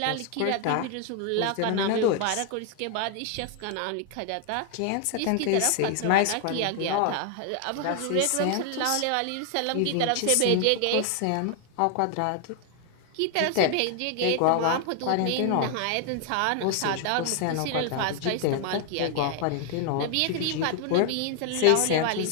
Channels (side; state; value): both; different; correlation 0.00